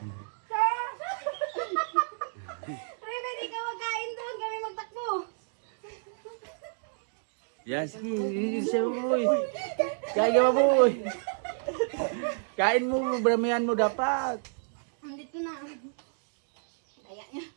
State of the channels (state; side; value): silent; left; digital silence